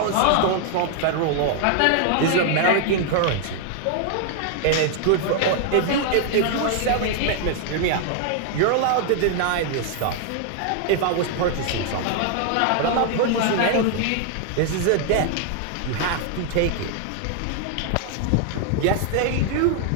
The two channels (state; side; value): different; both; correlation 0.00